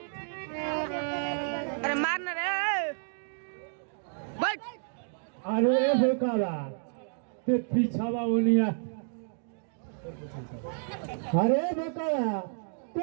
अरे मारना रे बैठ अरे बेकारा ते पीछावा उनिया अरे बेकारा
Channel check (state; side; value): silent; left; digital silence